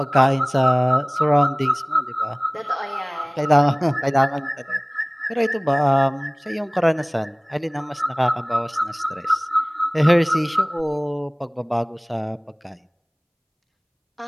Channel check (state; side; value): identical; both; correlation 1.00